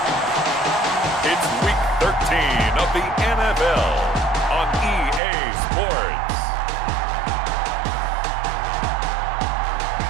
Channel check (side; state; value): left; drops out; at 5.2 s